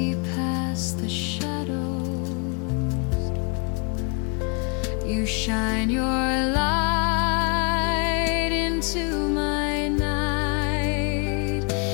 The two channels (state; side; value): quieter; right; 35.8 dB